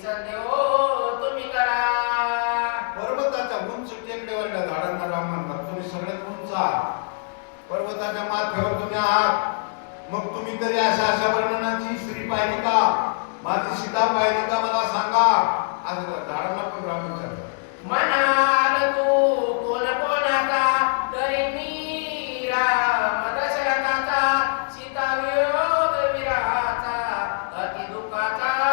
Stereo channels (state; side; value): silent; right; 63 dB below the other